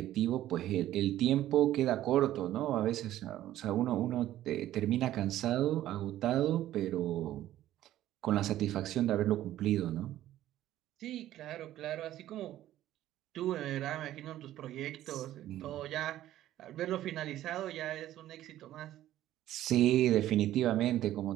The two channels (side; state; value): left; quieter; 13.4 dB